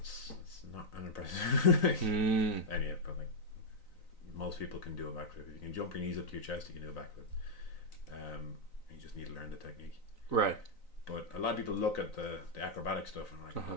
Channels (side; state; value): right; late; 3.9 ms